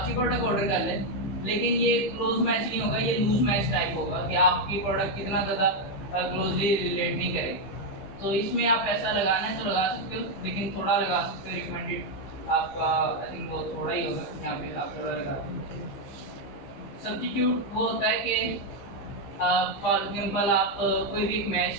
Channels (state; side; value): late; right; 15 ms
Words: प्रोडक्ट ऑर्डर कर ले, लेकिन ये क्लोज मैच नहीं होगा, ये लूज मैच टाइप होगा कि आपकी प्रोडक्ट कितना ज़्यादा क्लोजली रिलेट नहीं करे। तो इसमें आप पैसा लगाना है तो लगा सकते हो, लेकिन थोड़ा लगा सकते हो। रिकमेंडेड आपका आई थिंक वो थोड़ा ही होगा, यहाँ पे आप थोड़ा लगा सकते हो। सब्स्टिट्यूट वो होता है कि फॉर एग्जाम्पल आप कोई भी एक